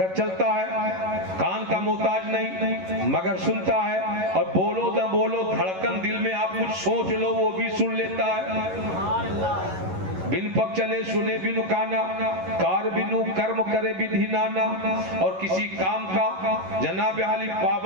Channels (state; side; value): late; left; 11 ms